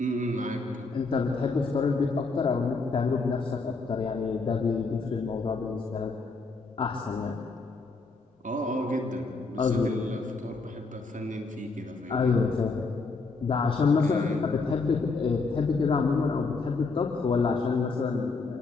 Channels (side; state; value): right; quieter; 4.0 dB